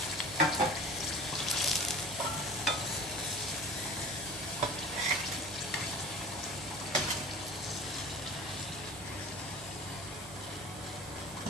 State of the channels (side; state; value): right; noise; hum, 17 dB below the sound